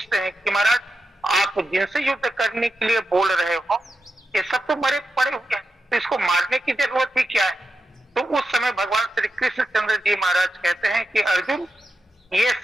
हैं कि महाराज आप जिनसे युद्ध करने के लिए बोल रहे हो ये सब तो मरे पड़े हुए हैं, तो इसको मारने की जरूरत ही क्या है। तो उस समय भगवान श्री कृष्णचंद्र जी महाराज कहते हैं कि अर्जुन ये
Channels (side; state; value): both; normal; correlation 0.89